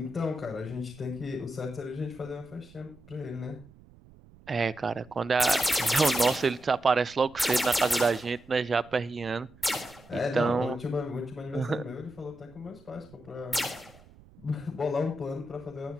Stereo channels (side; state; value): right; noise; rumble, 24 dB below the sound